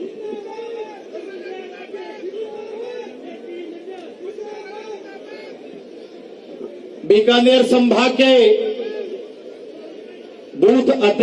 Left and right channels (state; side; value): identical; both; correlation 1.00